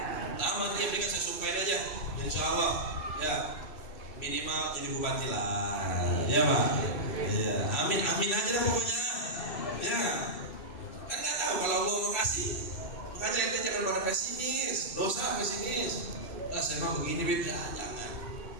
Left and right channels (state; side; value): late; right; 3.0 ms